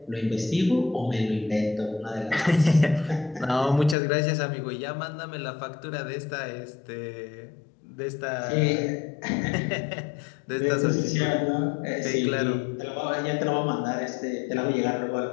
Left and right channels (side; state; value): right; drops out; at 4.0 s